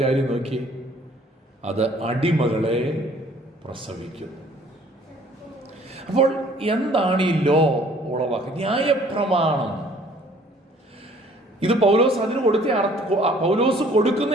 കാര്യം നോക്കി, അത് അടിമകളെ പ്രസവിക്കും. അപ്പോൾ എന്താണ് ഈ ലോ ഉളവാക്കുക? ന്യായപ്രമാണം. ഇത് പൗലോസ് അതിന് കൊടുത്ത പൗലോസ്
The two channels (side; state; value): both; normal; correlation 0.56